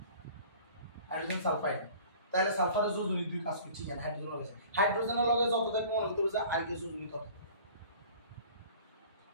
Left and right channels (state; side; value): inverted; both; correlation -0.46